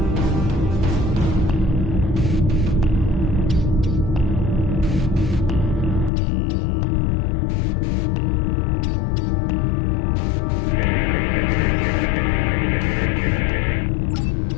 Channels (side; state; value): right; drops out; at 6.1 s